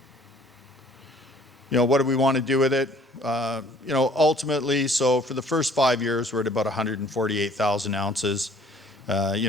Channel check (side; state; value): both; normal; correlation 0.56